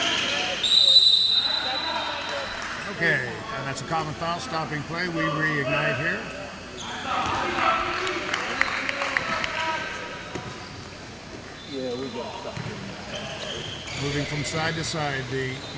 Okay, and that's a common foul, stopping play. We reignite here. Moving from side to side, the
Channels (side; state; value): both; identical; correlation 1.00